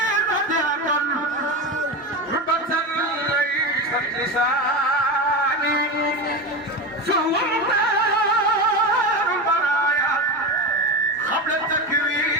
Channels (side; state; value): both; normal; correlation 0.21